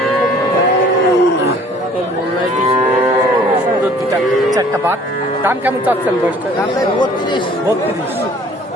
চারটা বাট। দাম কেমন চাচ্ছেন বয়সটা? 32।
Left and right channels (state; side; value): normal; both; correlation 0.53